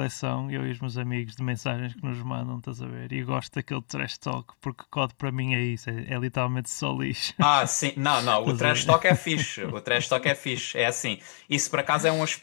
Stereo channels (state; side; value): silent; right; digital silence